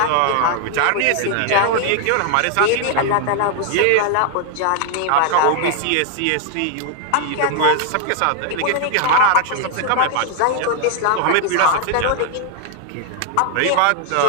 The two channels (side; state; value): both; different; correlation 0.00